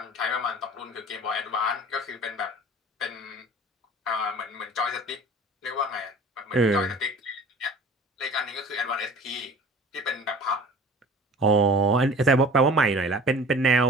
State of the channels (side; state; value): both; normal; correlation 0.44